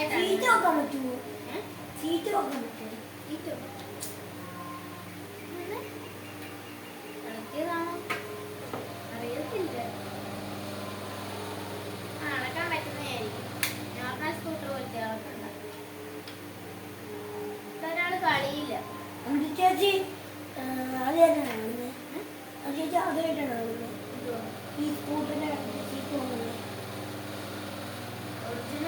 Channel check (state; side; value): identical; both; correlation 1.00